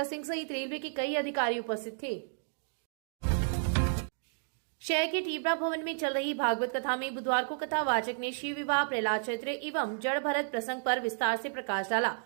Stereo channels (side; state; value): left; silent; digital silence